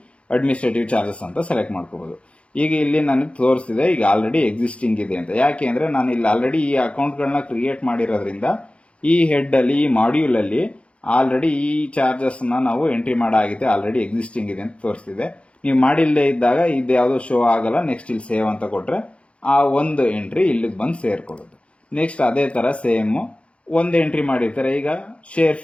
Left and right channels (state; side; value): late; right; 0.061 ms